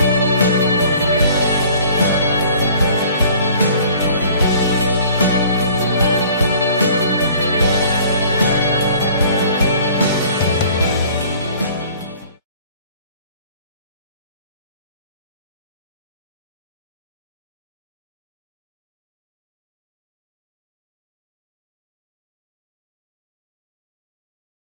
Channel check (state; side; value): inverted; both; correlation -0.51